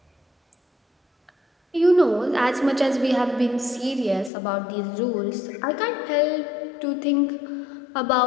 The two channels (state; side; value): drops out; right; at 4.3 s